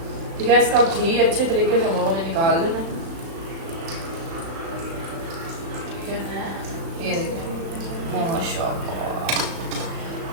ठीक है, इसका घी अच्छे तरीके से हम लोगों ने निकाल लेना। ये देखिए माशाल्लाह।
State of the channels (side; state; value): left; late; 36 ms